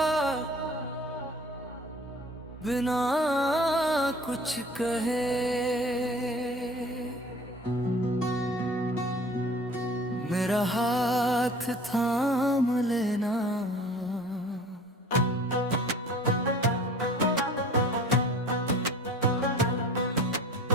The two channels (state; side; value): normal; both; correlation 0.45